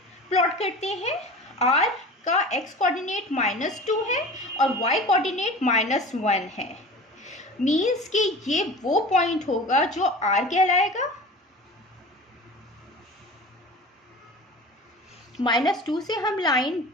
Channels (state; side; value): normal; both; correlation 0.37